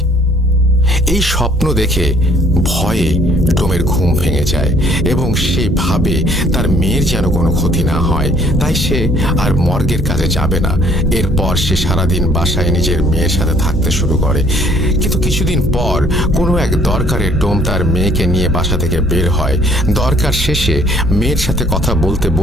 এই স্বপ্ন দেখে ভয়ে ডোমের ঘুম ভেঙে যায় এবং সে ভাবে তার মেয়ের যেন কোনো ক্ষতি না হয়, তাই সে আর মর্গের কাজে যাবে না। এরপর সে সারাদিন বাসায় নিজের মেয়ের সাথে থাকতে শুরু করে। কিন্তু কিছুদিন পর কোনো এক দরকারে ডোম তার মেয়েকে নিয়ে বাসা থেকে বের হয়। দরকার শেষে মেয়ের সাথে কথা বলতে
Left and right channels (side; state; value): both; normal; correlation 0.60